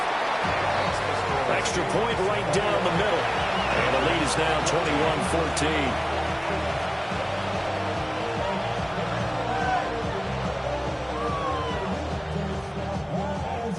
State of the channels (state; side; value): identical; both; correlation 1.00